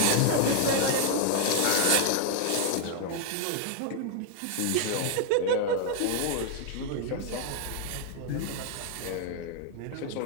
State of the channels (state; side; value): different; both; correlation 0.00